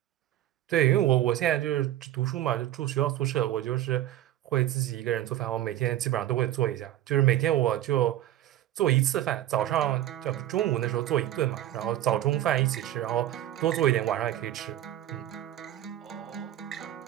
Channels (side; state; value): left; quieter; 13.1 dB